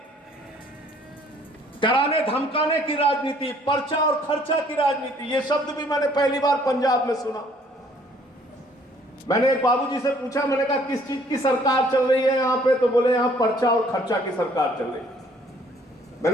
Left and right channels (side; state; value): both; normal; correlation 0.60